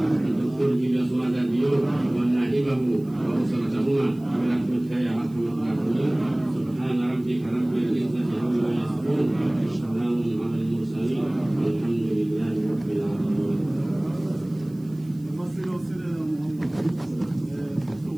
الدكتور جيلياس ماداديو ونائبه وأسرتهما برحمتك يا أرحم الراحمين. سبحان ربك رب العزة عما يصفون وسلام على المرسلين والحمد لله رب العالمين.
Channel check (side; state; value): right; noise; hiss, 29 dB below the sound